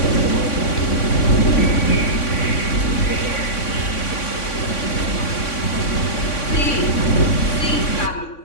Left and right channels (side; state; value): right; late; 3.6 ms